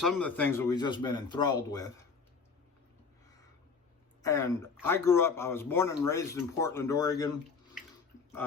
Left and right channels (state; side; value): quieter; right; 5.1 dB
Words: of the things that we've just been enthralled with. And I was born and raised in Portland, Oregon.